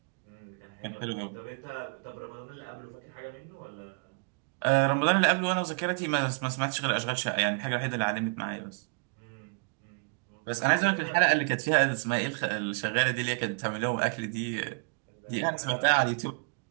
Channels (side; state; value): left; quieter; 39.5 dB